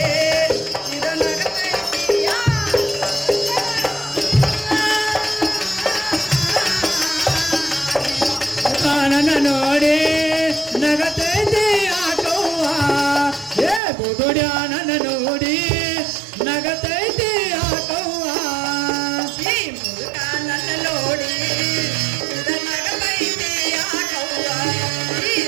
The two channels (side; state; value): left; drops out; at 13.8 s